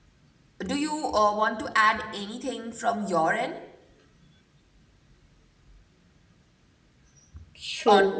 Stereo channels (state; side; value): identical; both; correlation 1.00